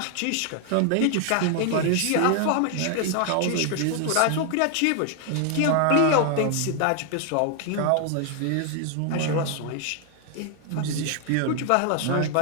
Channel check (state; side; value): different; both; correlation 0.00